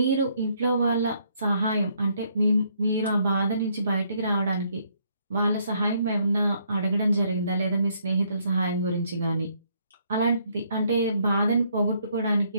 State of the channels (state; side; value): inverted; both; correlation -0.69